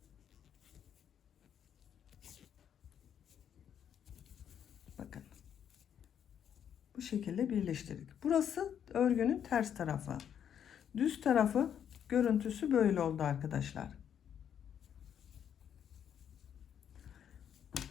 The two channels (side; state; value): right; quieter; 8.9 dB